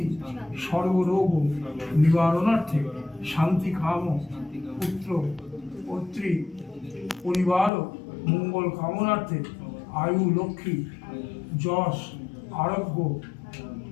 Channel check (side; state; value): right; drops out; at 7.7 s